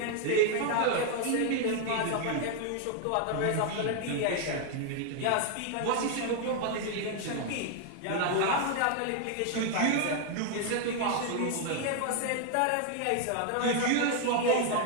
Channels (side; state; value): both; different; correlation 0.00